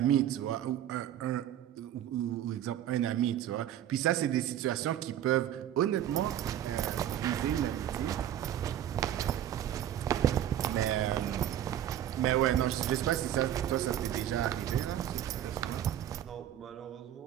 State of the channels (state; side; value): quieter; left; 11.2 dB